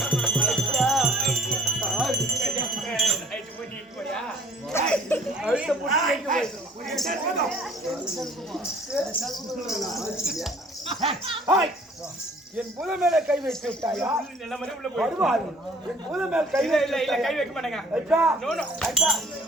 என் புத மேல கை வைத்து விட்டாயா? வருவாரு. என் புத மேல கை கை வைக்க மாட்டேங்க.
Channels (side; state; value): both; normal; correlation 0.57